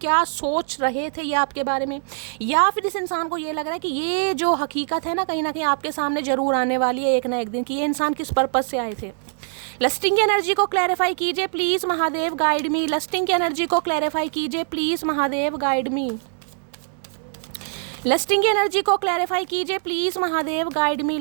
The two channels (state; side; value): silent; left; 63 dB below the other